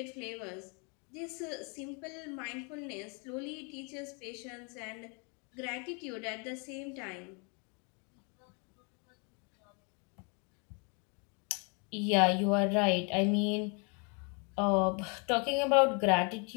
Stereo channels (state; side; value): quieter; right; 35.1 dB